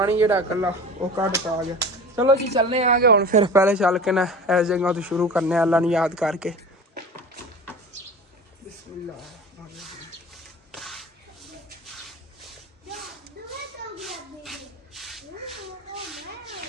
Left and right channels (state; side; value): normal; both; correlation 0.36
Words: ਜਿਹੜਾ ਇਕੱਲਾ ਉਹ ਕੱਢ ਤਾ ਗਿਆ। ਚਲੋ ਜੀ ਚੱਲਨੇ ਆਗੇ ਹੁਣ, ਫਿਰ ਪਹਿਲੇ ਚੱਲ ਕੇ ਨਾ ਇਸ ਜਗ੍ਹਾ ਤੋਂ ਸ਼ੁਰੂ ਕਰਨੇ ਅੱਲਾ ਨੂੰ ਯਾਦ ਕਰਕੇ। ਬਿਸਮਿल्लाह।